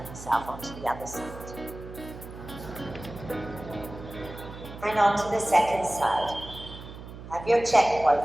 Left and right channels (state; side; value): noise; right; hum, 13 dB below the sound